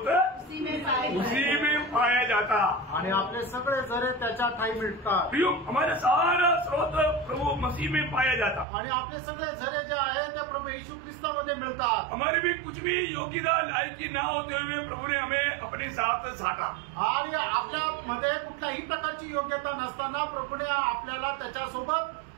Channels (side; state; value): left; drops out; at 8.7 s